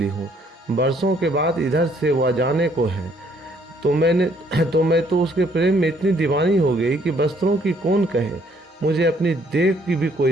हूँ। बरसों के बाद इधर से वह जाने को है। मैं तो उसके प्रेम में इतनी दीवानी हो गई कि वस्त्रों की कौन कहे, मुझे अपनी देख की भी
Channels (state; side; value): normal; both; correlation 0.65